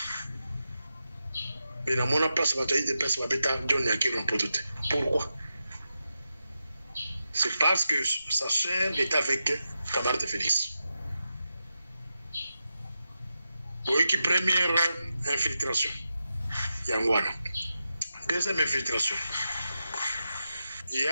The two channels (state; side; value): inverted; both; correlation -0.89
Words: Mais dans mon place, il y a des personnes qui ont John Nyakero en prototé. Pourquoi? C'est parce que sa sœur est avec camarade de Félix. Oui, qui première infiltration. Yangwana. Deuxième infiltration. Il y